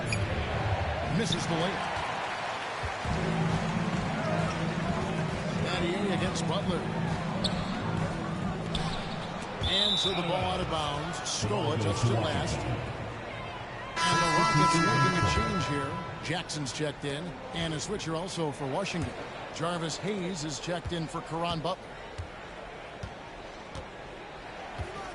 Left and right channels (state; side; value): identical; both; correlation 1.00